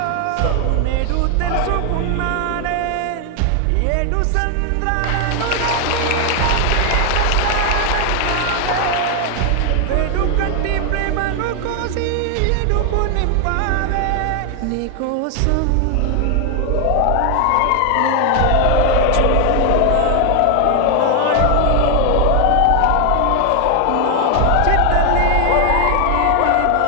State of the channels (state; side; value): different; both; correlation 0.00